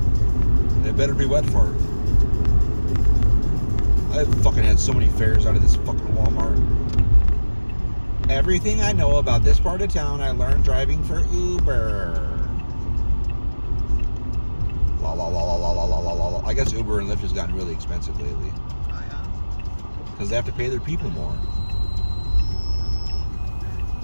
it better be Wet Fart. I fucking had so many fares out of this fucking Walmart. Everything I know about this part of town, I learned driving for Uber. La la la la la la la la la. I guess Uber and Lyft has gotten really expensive lately. Oh yeah. Because they have to pay their people more.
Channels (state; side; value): inverted; both; correlation -1.00